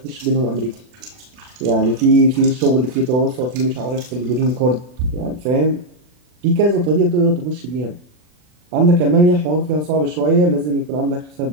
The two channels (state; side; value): late; left; 40 ms